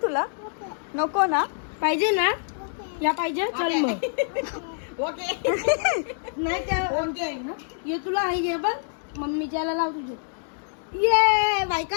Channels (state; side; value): silent; right; digital silence